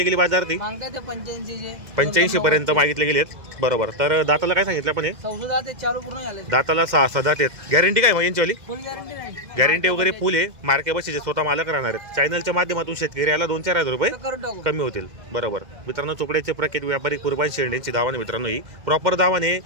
गेली बाजार ती? मागताय ते 85 चे. 85 पर्यंत मागितले गेलेत. बरोबर. तर दाताला काय सांगितलं आपण? हे सौदा ते चालू पूर्ण झाले. दाताला 6 दात आहेत. गॅरंटी काय मग यांची? फुल गॅरंटी नाही. गॅरंटी वगैरे फुल आहे. मार्के बशीचे स्वतः मालक राहणार आहेत. चॅनलच्या माध्यमातून शेतकऱ्याला 2-4 हजार रुपये करून टाकू. कमी होतील. बरोबर मित्रांनो, चोपड्याचे प्रख्यात व्यापारी कुर्बान शेंडेंची दावाने मित्रांनो, ही प्रॉपर दावाने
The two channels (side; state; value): left; late; 2.0 ms